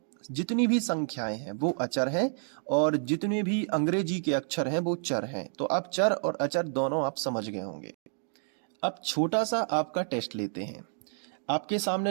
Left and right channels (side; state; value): left; silent; digital silence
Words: जितनी भी संख्याएं हैं वो अचर हैं, और जितने भी अंग्रेजी के अक्षर हैं वो चर हैं। तो अब चर और अचर दोनों आप समझ गए होंगे। अब छोटा सा आपका टेस्ट लेते हैं। आपके सामने